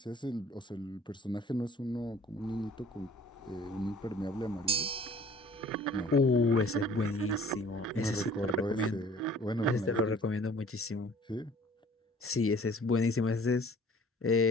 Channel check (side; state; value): both; normal; correlation 0.51